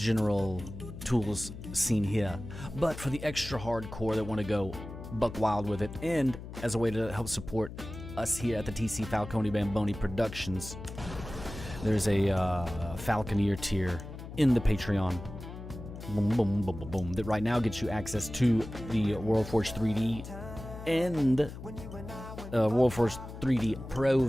tools seen here. But for the extra hardcore that want to go buck wild with it, and as a way to help support us here at the TC Falcone Bamboni Productions, there's a Falconeer tier in the Patreon. Boom, boom, boom, boom, boom. That right now gets you access to the World Forge 3D and World Forge 3D Pro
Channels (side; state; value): left; noise; hum, 11 dB below the sound